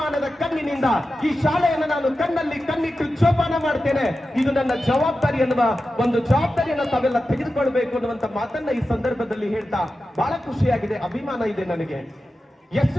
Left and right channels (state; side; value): normal; both; correlation 0.92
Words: ಕಣ್ಣಿನಿಂದ ಈ ಶಾಲೆಯನ್ನು ನಾನು ಕಣ್ಣಲ್ಲಿ ಕಣ್ಣಿಟ್ಟು ಜೋಪಾನ ಮಾಡ್ತೇನೆ. ಇದು ನನ್ನ ಜವಾಬ್ದಾರಿ ಅನ್ನುವ ಒಂದು ಜವಾಬ್ದಾರಿಯನ್ನು ತಾವೆಲ್ಲ ತೆಗೆದುಕೊಳ್ಬೇಕು ಅನ್ನುವಂತ ಮಾತನ್ನ ಈ ಸಂದರ್ಭದಲ್ಲಿ ಹೇಳ್ತಾ ಬಹಳ ಖುಷಿಯಾಗಿದೆ, ಅಭಿಮಾನ ಇದೆ ನನಗೆ. ಎಷ್ಟು